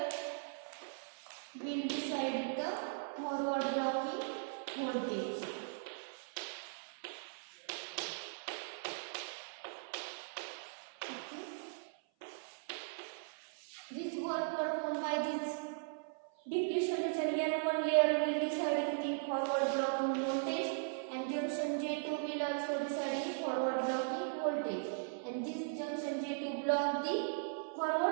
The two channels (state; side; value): silent; left; 52 dB below the other